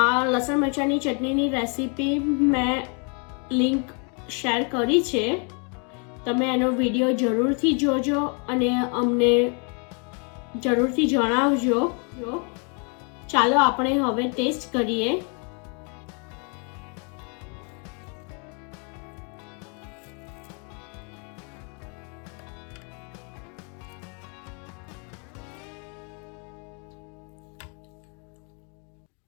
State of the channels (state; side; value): quieter; right; 37.0 dB